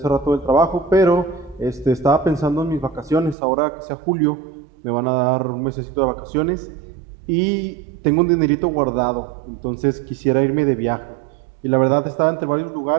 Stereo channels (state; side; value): drops out; left; at 3.4 s